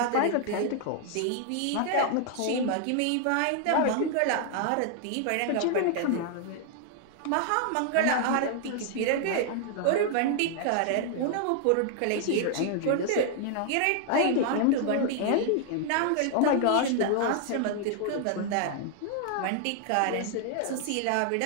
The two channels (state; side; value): different; both; correlation 0.00